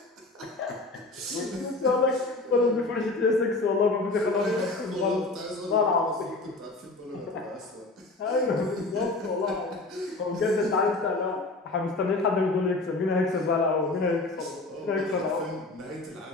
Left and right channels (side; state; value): right; quieter; 3.2 dB